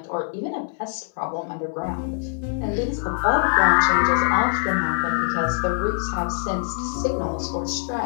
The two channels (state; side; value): silent; right; 63 dB below the other